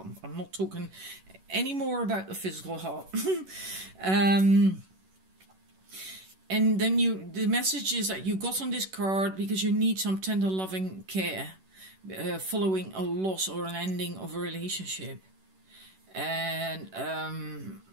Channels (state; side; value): late; left; 11 ms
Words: I'm not talking any more about the physical heart. And then the message is that you got on this card because you need some tender loving care following a loss or an ending of a relationship. And